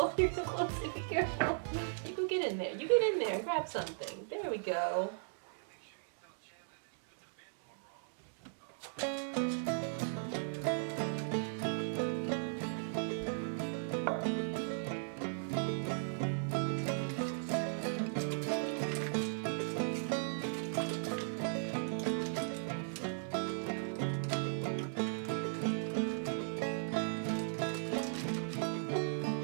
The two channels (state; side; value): silent; left; digital silence